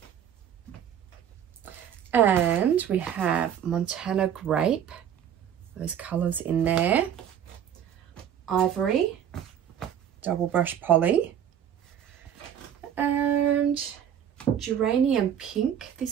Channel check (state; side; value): quieter; left; 9.3 dB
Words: And we have Montana Grape. Those colours in there. Ivory, double brush poly. And Geranium Pink.